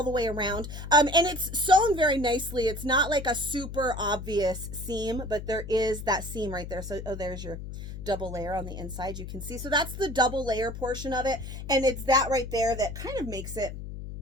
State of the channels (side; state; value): left; noise; hum, 9 dB below the sound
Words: the way around, and it's sewn very nicely. It's not like a super obvious seam, but there is that seam right there. So, oh, there's your double layer on the inside, you can see. So that's the double layer portion of it, and it's that right there that kind of makes it